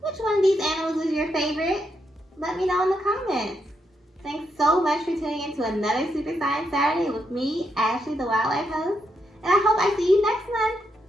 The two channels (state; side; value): normal; both; correlation 0.80